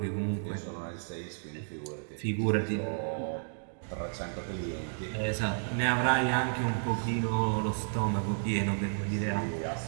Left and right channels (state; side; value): silent; left; digital silence